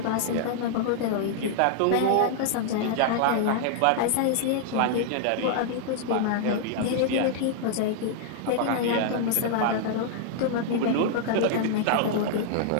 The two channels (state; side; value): different; both; correlation -0.01